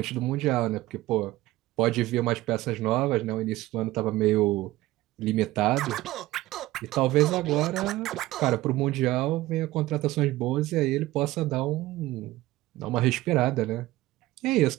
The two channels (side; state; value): left; quieter; 17.3 dB